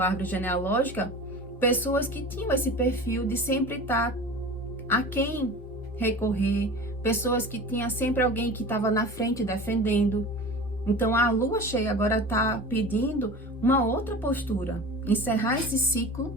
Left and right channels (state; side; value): normal; both; correlation 0.35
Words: árvore genealógica, pessoas que tinham esse perfil de sempre estar a quem recorrer, pessoas que tinham sempre alguém que estava na frente defendendo. Então a lua cheia agora está pedindo uma outra postura, encerrar esse ciclo